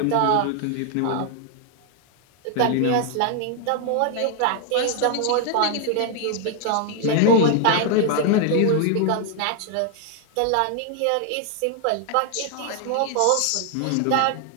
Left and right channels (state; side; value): different; both; correlation 0.00